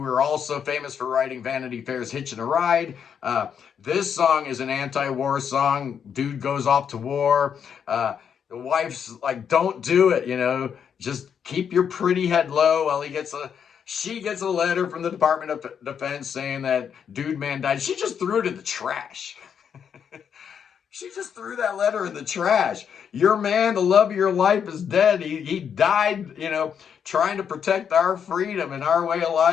also famous for writing Vanity Fair's Hitchin' a Ride. This song is an anti-war song. Dude goes off to war. The wife's like, don't do it, just keep your pretty head low while she gets a letter from the Department of Defense saying that dude man died. She just threw it in the trash. She just threw that letter in the trash. Your man, the love of your life, is dead. He died, trying to protect our freedom and our way of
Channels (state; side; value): quieter; right; 7.7 dB